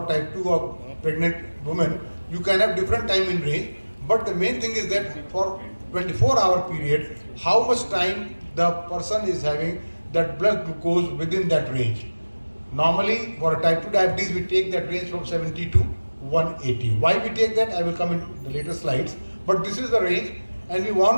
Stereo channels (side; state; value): both; inverted; correlation -1.00